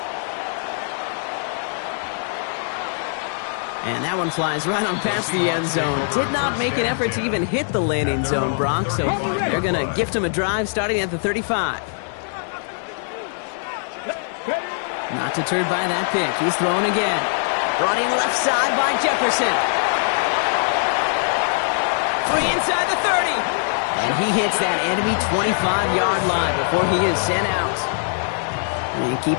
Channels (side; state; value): right; silent; digital silence